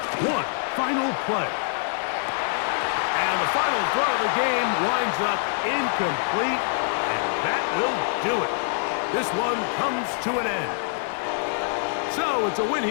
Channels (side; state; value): right; silent; digital silence